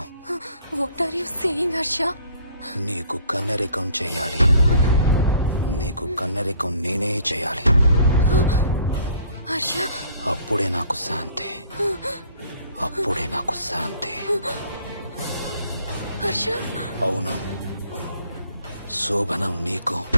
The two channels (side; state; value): both; inverted; correlation -0.57